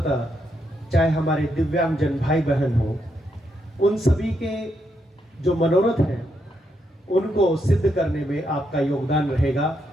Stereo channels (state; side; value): normal; both; correlation 0.80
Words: चाहे हमारे दिव्यांगजन भाई बहन हो, उन सभी के जो मनोरथ हैं उनको सिद्ध करने में आपका योगदान रहेगा।